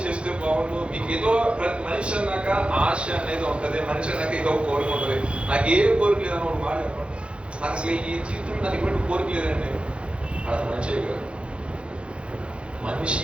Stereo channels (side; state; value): left; late; 0.058 ms